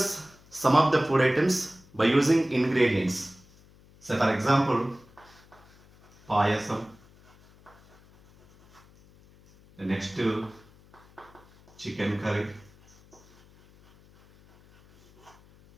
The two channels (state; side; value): noise; left; hum, 27 dB below the sound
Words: some of the food items by using ingredients. So for example, payasam. The next chicken curry.